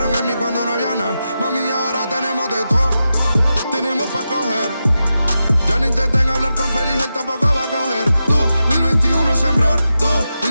en mí cuando no había nada. Mami, ahora tenemos de todo, tenemos pa' coger. Ya no intenten hablar con Feliz, él tampoco va a coger. 2021 sembrar,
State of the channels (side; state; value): both; inverted; correlation -0.90